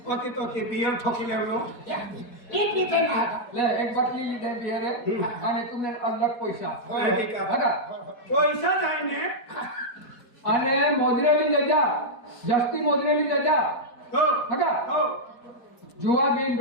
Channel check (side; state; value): right; late; 4.6 ms